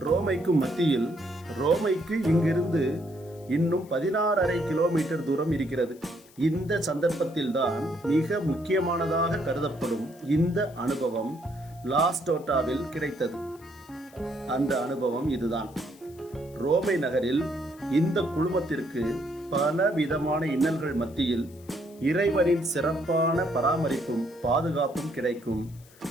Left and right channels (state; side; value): noise; left; hiss, 26 dB below the sound